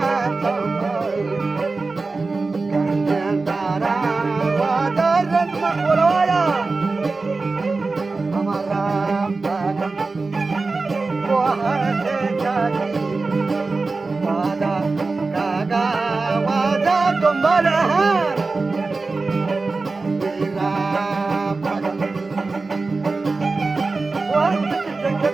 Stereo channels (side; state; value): left; quieter; 3.8 dB